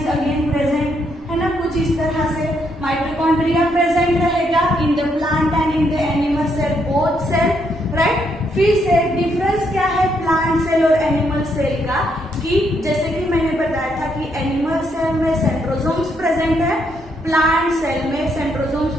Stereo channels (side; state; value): both; normal; correlation 0.75